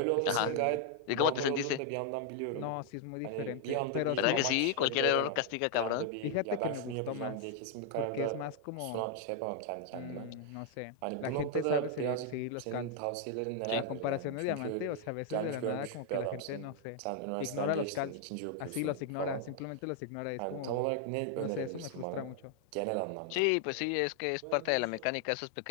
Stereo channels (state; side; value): different; both; correlation 0.00